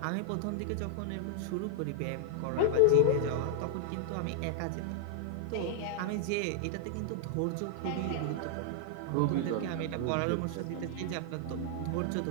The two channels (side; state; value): both; different; correlation -0.01